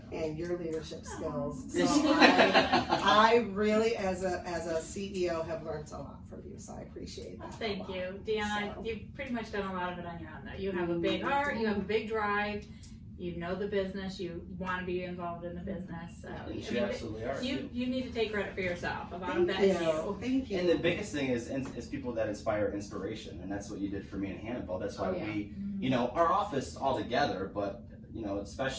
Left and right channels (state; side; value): identical; both; correlation 1.00